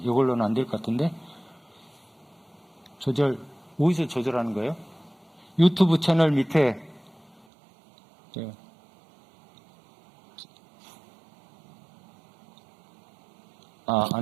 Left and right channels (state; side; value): drops out; left; at 7.5 s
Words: 안 될 것 같은데. 어디서 조절하는 거예요? 유튜브 채널 밑에